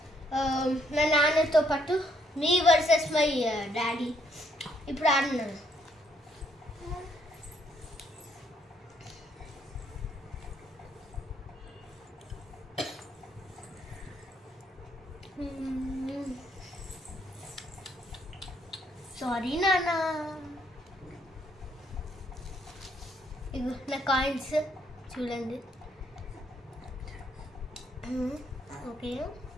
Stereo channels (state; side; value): normal; both; correlation 0.71